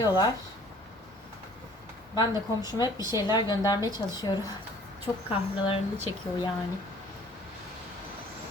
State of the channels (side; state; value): both; normal; correlation 0.53